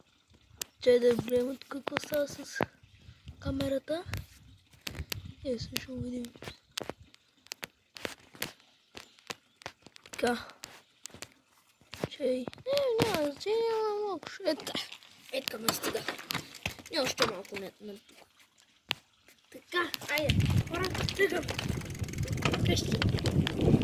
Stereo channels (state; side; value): identical; both; correlation 1.00